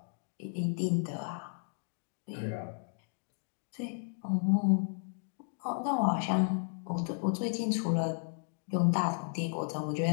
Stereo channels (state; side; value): silent; right; digital silence